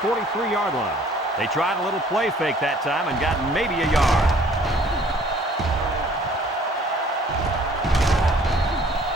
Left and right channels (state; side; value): normal; both; correlation 0.55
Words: line. They tried a little play fake that time and got maybe a yard.